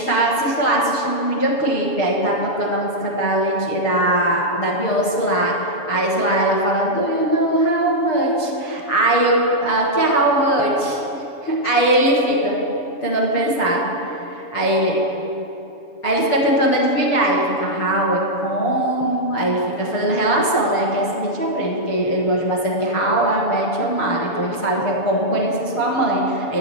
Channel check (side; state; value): right; late; 7.0 ms